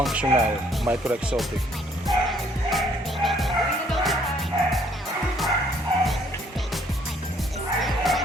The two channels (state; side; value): normal; both; correlation 0.64